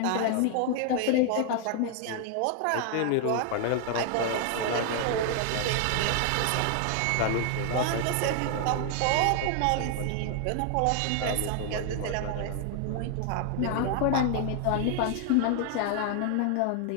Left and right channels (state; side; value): different; both; correlation 0.00